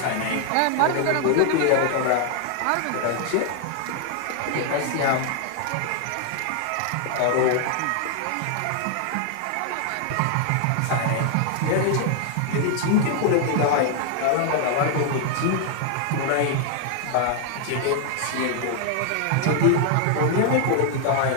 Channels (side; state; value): both; different; correlation 0.00